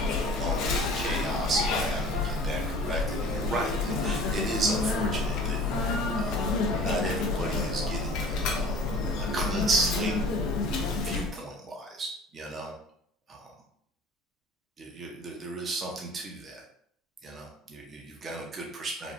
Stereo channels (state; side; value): normal; both; correlation 0.45